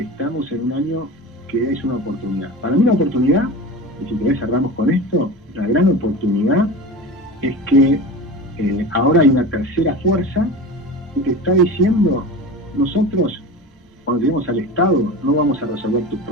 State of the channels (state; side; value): normal; both; correlation 0.31